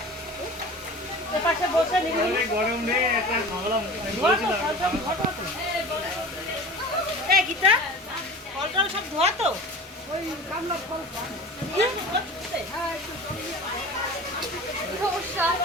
পাশে বসে গরম রে একটা গীতা ফল টল সব ধোয়া তো ওই কামলা ফল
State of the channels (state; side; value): normal; both; correlation 0.37